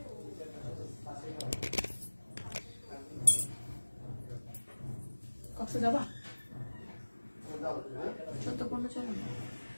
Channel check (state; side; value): inverted; both; correlation -1.00